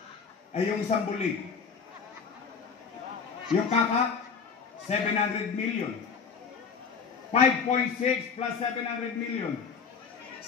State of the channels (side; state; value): right; quieter; 5.8 dB